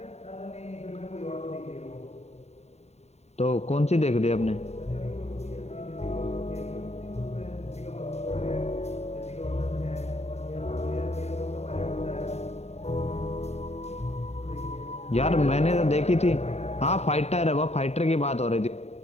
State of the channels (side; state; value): right; late; 0.32 ms